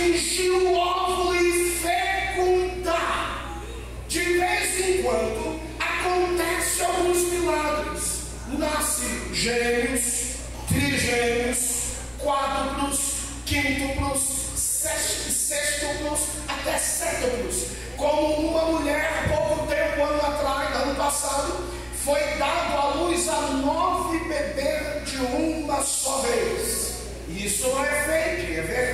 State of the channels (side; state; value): both; identical; correlation 1.00